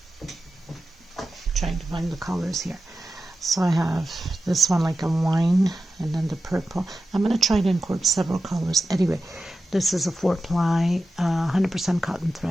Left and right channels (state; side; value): normal; both; correlation 0.93